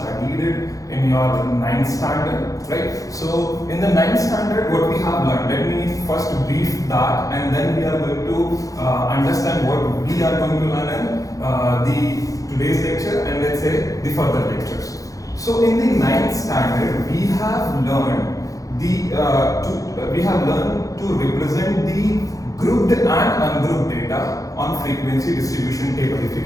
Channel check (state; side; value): late; right; 0.17 ms